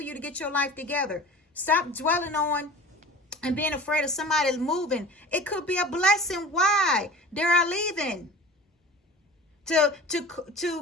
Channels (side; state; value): both; normal; correlation 0.38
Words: you to get your life together. Stop dwelling on and being afraid of somebody moving. It could be a blessing. Why? They are leaving. To